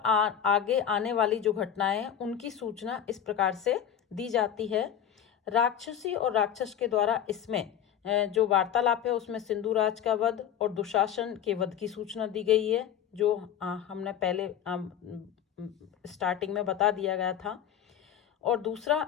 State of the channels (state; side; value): quieter; right; 9.5 dB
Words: आने वाली जो घटनाएं हैं उनकी सूचना इस प्रकार से दी जाती है। राक्षसी और राक्षस के द्वारा इसमें जो वार्तालाप है उसमें सिंधुराज का वध और दुशासन के वध की सूचना दी गई है, जो हमने पहले स्टार्टिंग में बता दिया गया था। और